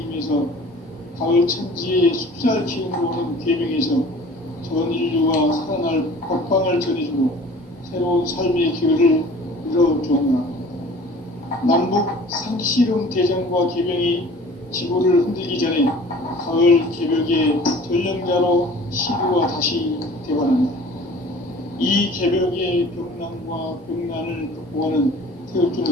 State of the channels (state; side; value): normal; both; correlation 0.47